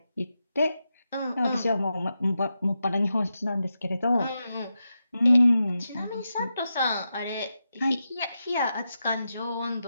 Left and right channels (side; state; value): both; inverted; correlation -0.88